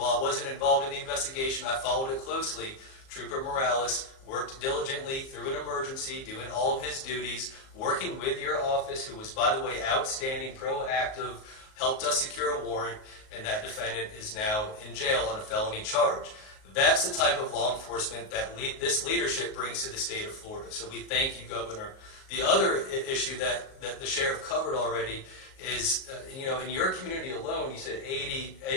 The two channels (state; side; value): late; right; 38 ms